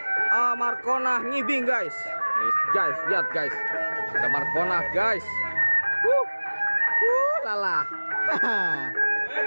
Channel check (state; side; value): inverted; both; correlation -1.00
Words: Markona ngibing guys. Nih guys, lihat guys. Ada Markona guys. Lala.